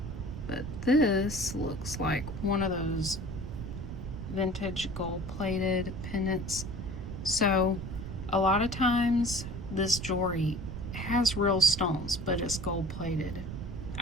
but this looks like one of those vintage gold plated pendants. So a lot of times this jewelry has real stones, but it's gold plated.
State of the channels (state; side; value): noise; right; rumble, 7 dB below the sound